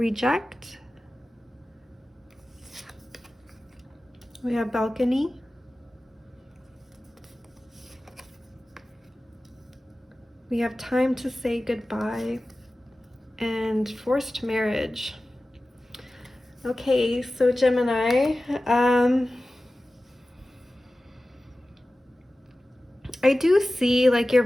We have balcony. We have time to say goodbye and forced marriage. Okay, so Gemini, I do see like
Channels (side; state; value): both; normal; correlation 0.96